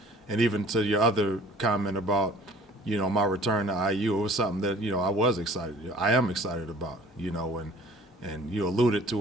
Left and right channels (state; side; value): normal; both; correlation 0.50